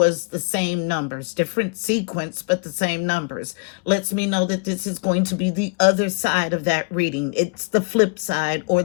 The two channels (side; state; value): right; quieter; 32.9 dB